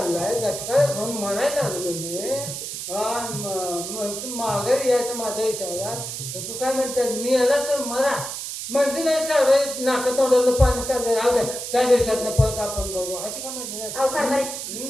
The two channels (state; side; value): noise; right; hiss, 6 dB below the sound